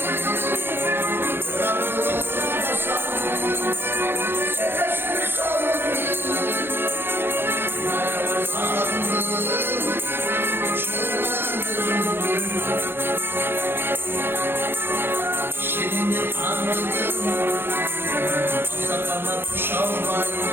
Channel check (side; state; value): left; late; 0.10 ms